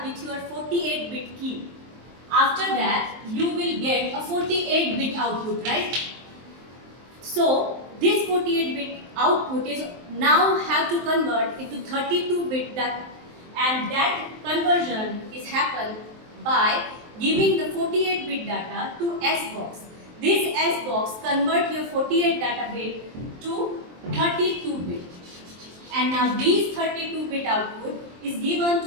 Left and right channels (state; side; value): late; left; 23 ms